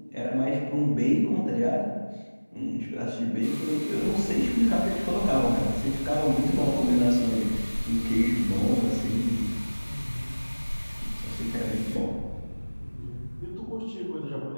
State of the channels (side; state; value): both; inverted; correlation -1.00